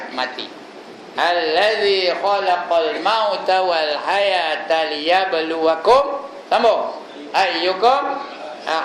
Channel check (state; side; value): identical; both; correlation 1.00